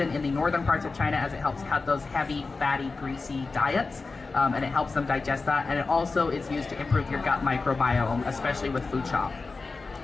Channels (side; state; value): right; quieter; 4.0 dB